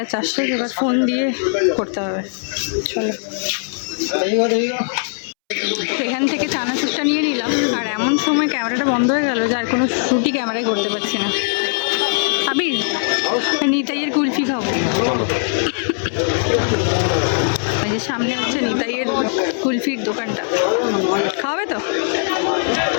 চার্জ শেষ, এবার ফোন দিয়ে করতে হবে। চলো এখান থেকে চানাচুরটা নিয়ে নিলাম, আর এমন সময় ক্যামেরাটা বন্ধ হয়ে গেল যে আর কোনো শ্যুটই ক্যামেরায় করতে পারছি না। আবির নিতাইয়ের কুলফি খাবো, ওই যে সামনে হচ্ছে নিতাইয়ের কুলফির দোকানটা, খাওয়াবে তো?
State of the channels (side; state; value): right; silent; 66 dB below the other